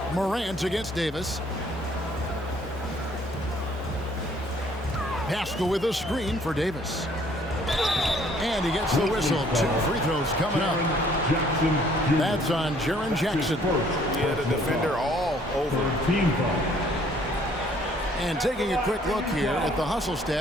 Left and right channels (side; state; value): both; normal; correlation 0.61